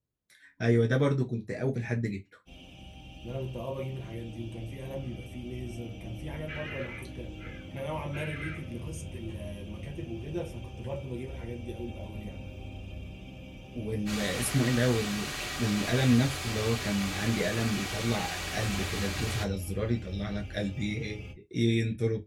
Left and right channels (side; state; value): both; identical; correlation 1.00